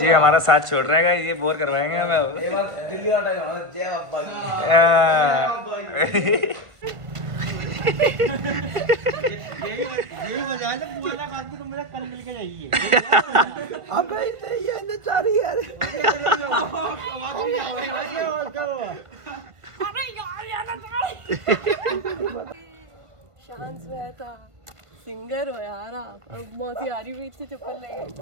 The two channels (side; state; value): left; late; 1.5 ms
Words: हमारा साथ छोड़ रहे हैं, ये बोर करवाएंगे हमें अब। दिल्ली वाला टाइम जय बाबा की। ये बजा ले बुआला खाते तो मेरा कल मिल के जाइए। अबे ये न चारी यार। शांत रहता सिंगर हो यार आप। अब मौसी आ रही हुई थी चप्पल लेके